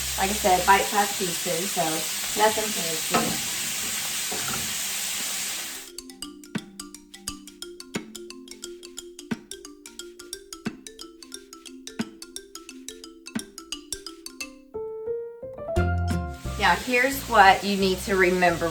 like I said, bite-sized pieces, so nothing fancy. Now here's what you need to remember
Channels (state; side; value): identical; both; correlation 1.00